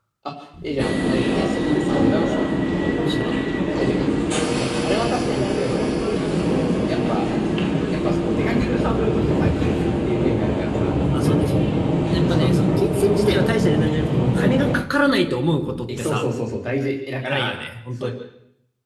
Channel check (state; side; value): identical; both; correlation 1.00